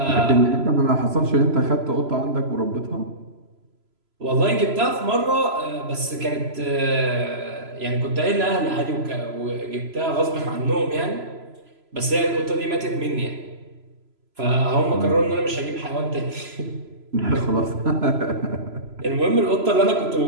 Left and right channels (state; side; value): late; left; 3.0 ms